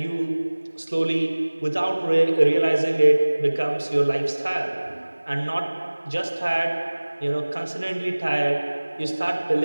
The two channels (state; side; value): inverted; both; correlation -1.00